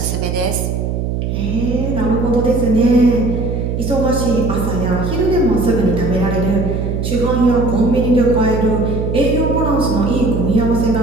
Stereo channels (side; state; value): right; noise; hum, 2 dB below the sound